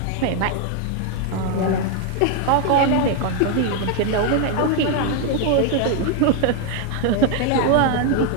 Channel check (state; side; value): different; both; correlation 0.01